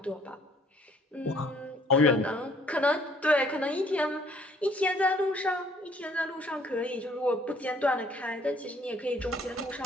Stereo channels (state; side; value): normal; both; correlation 0.61